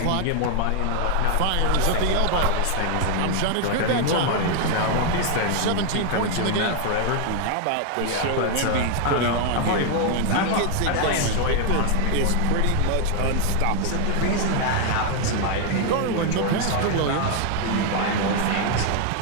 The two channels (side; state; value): both; different; correlation 0.00